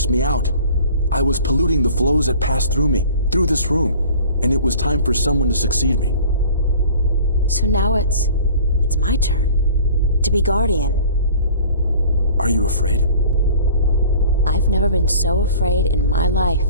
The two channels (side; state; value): both; inverted; correlation -0.46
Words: me out. I was polluting the flows that passed through me, through this room, and it was time for someone to succeed me. So now it's my turn to be guardian. Are you afraid? I've never been so afraid in my life.